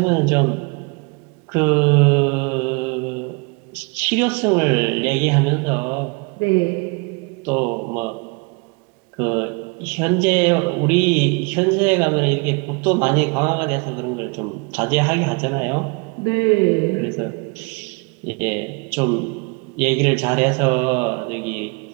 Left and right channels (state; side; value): quieter; left; 31.0 dB